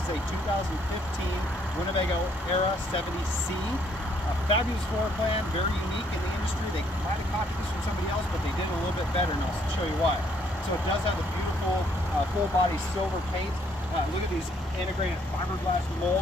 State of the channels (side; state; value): both; normal; correlation 0.67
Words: a 2015 Winnebago Era 70C. A fabulous floor plan, very unique in the industry. They might have copied this from somebody else, but they did it a little bit better, and I'll show you why. So it does have the beautiful full body silver paint. Look at these integrated fiberglass